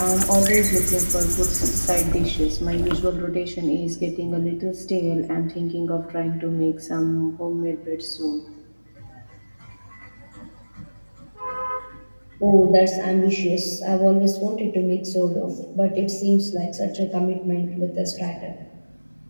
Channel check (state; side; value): inverted; both; correlation -1.00